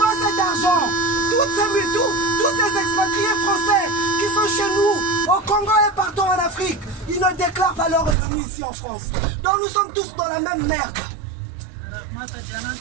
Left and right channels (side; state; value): left; drops out; at 8.2 s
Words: cet argent? Tous ces expatriés français qui sont chez nous, au Congo et partout en Afrique, ils ne déclarent pas leurs revenus ici en France. Donc nous sommes tous dans la même merde.